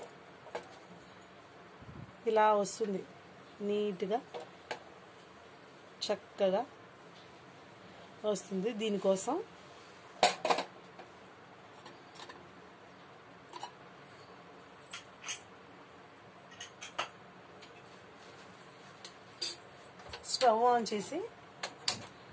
ఇలా వస్తుంది, నీట్గా చక్కగా వస్తుంది. దీనికోసం స్టవ్ ఆన్ చేసి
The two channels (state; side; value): identical; both; correlation 1.00